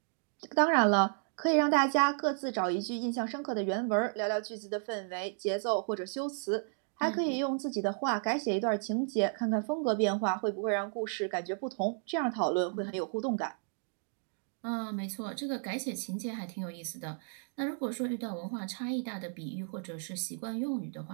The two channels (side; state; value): left; silent; 56 dB below the other